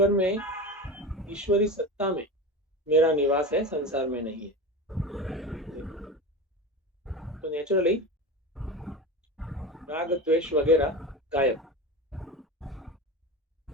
में, ईश्वरी सत्ता में मेरा निवास है, संसार में नहीं है। तो नेचुरली राग द्वेष वगैरह गायब,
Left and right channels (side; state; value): both; normal; correlation 0.26